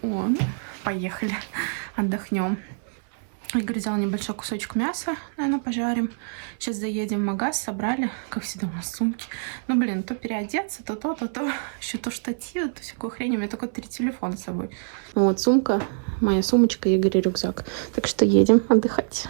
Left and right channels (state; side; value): silent; left; 60 dB below the other